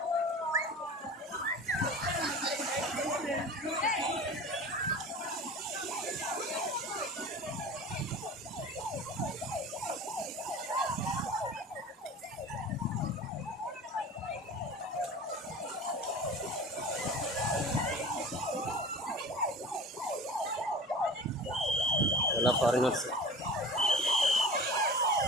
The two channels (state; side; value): normal; both; correlation 0.37